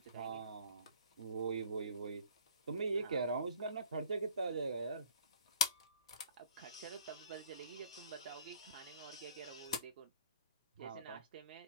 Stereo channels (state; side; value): inverted; both; correlation -0.50